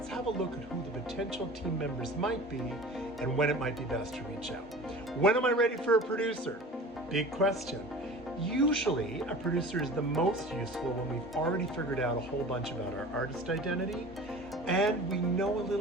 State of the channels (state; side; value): normal; both; correlation 0.39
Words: have a look at who the potential team members might be and when it might be best to reach out. When am I ready for a producer? Big question. Usually, a producer is the most useful when we've already figured out a whole bunch about our artist identity and we know a